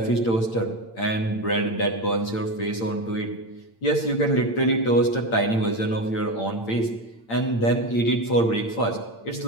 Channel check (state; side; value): late; right; 8.8 ms